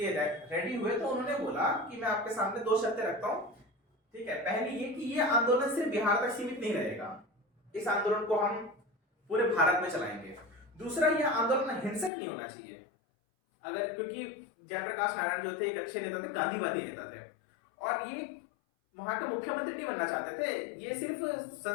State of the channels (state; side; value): drops out; right; at 12.1 s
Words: रेडी हुए तो उन्होंने बोला कि मैं आपके सामने दो शर्तें रखता हूं, ठीक है। पहली ये कि ये आंदोलन सिर्फ बिहार तक सीमित नहीं रहेगा, इस आंदोलन को हम पूरे भारत में चलाएंगे। दूसरा, यह आंदोलन हिंसक नहीं होना चाहिए। अगर, क्योंकि जयप्रकाश नारायण जो थे एक अच्छे नेता थे, गांधीवादी नेता थे, और ये वहां के मुख्यमंत्री नहीं बनना चाहते थे, ये सिर्फ